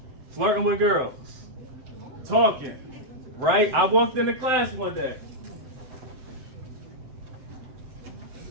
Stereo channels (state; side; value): late; left; 7.8 ms